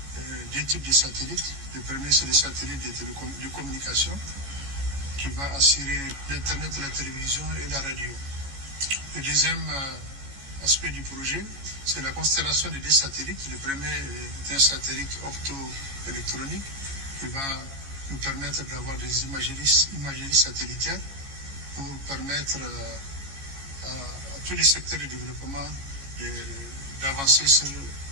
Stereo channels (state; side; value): late; left; 15 ms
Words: deux types de satellites. Le premier, c'est les satellites de communication qui va assurer l'Internet, la télévision et la radio. Le deuxième aspect du projet, c'est la constellation de deux satellites. Le premier est un satellite opto-électronique qui va nous permettre d'avoir des imageries satellitaires pour permettre à tous les secteurs de développement d'avancer sur